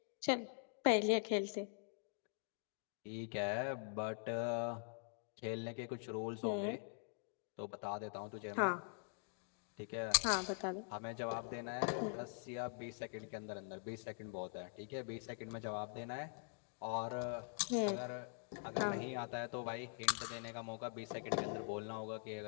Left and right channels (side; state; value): right; silent; digital silence